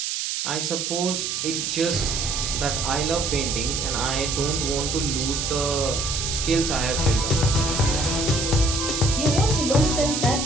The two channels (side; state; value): right; noise; hiss, 2 dB below the sound